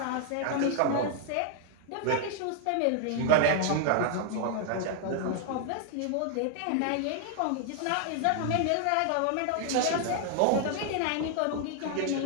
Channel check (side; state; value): both; different; correlation 0.00